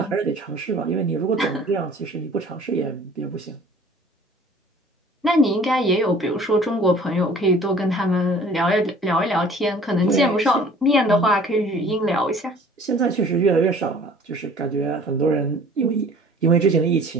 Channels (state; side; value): normal; both; correlation 0.50